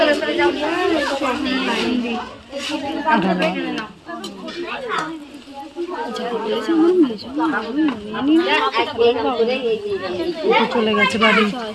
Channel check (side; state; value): both; identical; correlation 1.00